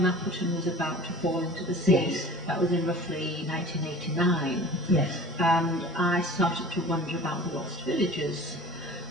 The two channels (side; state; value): both; normal; correlation 0.42